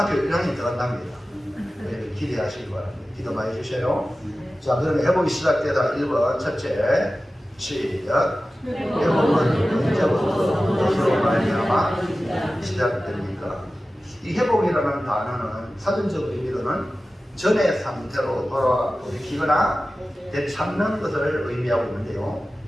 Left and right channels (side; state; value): both; normal; correlation 0.95